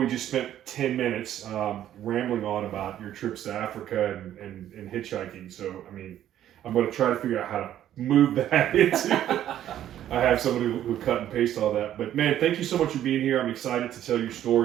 just spent 10 minutes rambling on about your trips to Africa and hitchhiking. So, I mean, I'm going to try to figure out how to move that into. I have somebody who cut and paste all that. But man, thank you so much for being here. I'm excited to tell your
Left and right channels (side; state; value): left; quieter; 11.6 dB